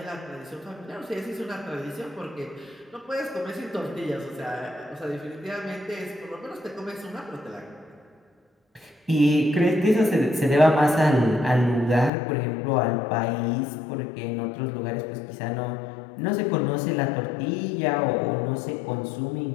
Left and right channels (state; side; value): drops out; right; at 12.1 s